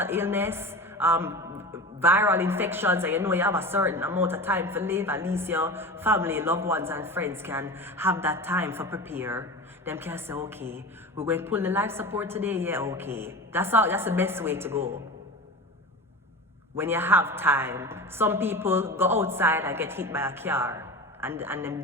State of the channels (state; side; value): normal; both; correlation 0.31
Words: illness, viral infections, and you know you have a certain amount of time to live, at least your family, loved ones, and friends can have that time for prepare. Them can say, okay, we're going to pull the life support today, yeah, okay. That's the best way to go. When you have time, some people go outside and get hit by a car and them